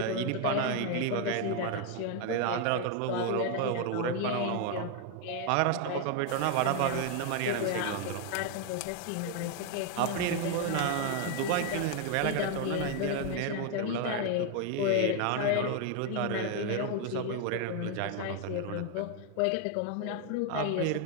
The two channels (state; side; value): different; both; correlation 0.01